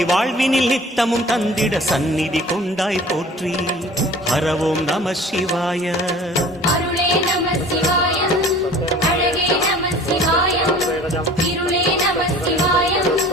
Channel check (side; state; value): both; normal; correlation 0.46